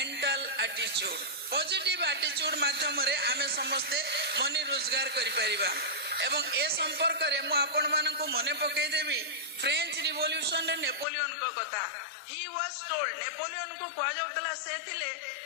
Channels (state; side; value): drops out; right; at 11.1 s